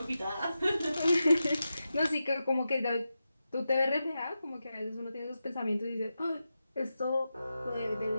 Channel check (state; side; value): inverted; both; correlation -0.90